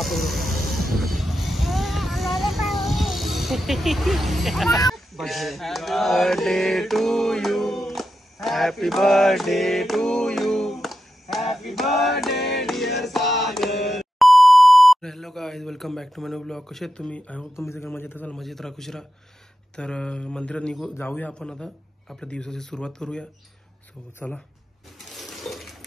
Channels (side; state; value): both; normal; correlation 0.88